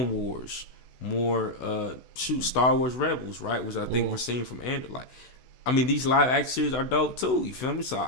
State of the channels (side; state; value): right; late; 16 ms